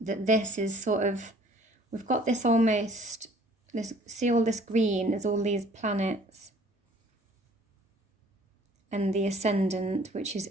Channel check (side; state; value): both; normal; correlation 0.54